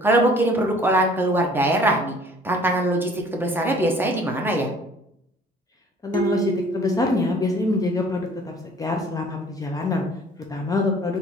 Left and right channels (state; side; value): normal; both; correlation 0.54